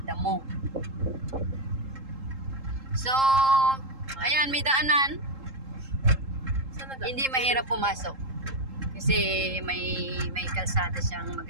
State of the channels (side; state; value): left; late; 3.7 ms